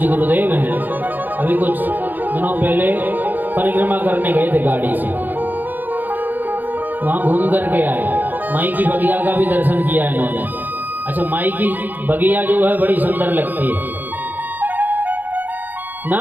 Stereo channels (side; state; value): left; late; 0.086 ms